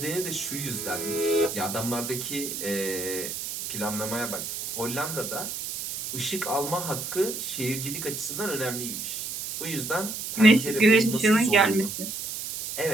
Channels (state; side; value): noise; right; hiss, 6 dB below the sound